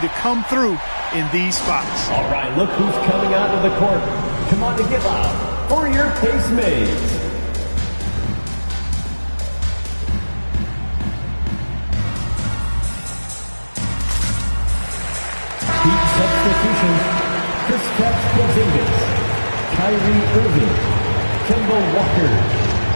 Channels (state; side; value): inverted; both; correlation -1.00